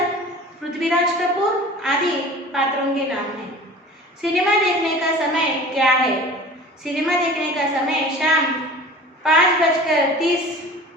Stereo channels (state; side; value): normal; both; correlation 0.41